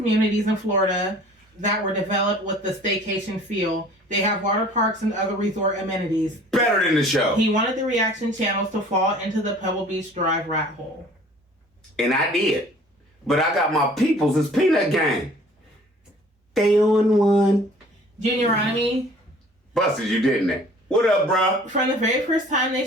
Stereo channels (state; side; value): normal; both; correlation 0.50